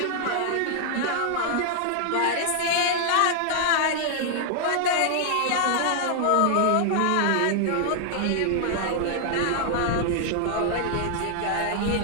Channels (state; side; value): different; both; correlation 0.00